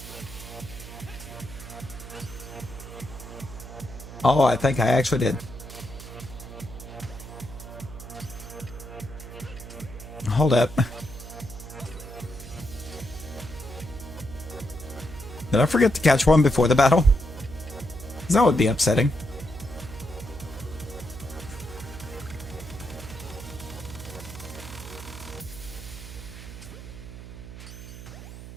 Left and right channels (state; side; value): noise; right; hum, 13 dB below the sound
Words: Oh, I think I actually did. Hold up. Did I forget to catch one before the battle? 'Cause that would be upsetting.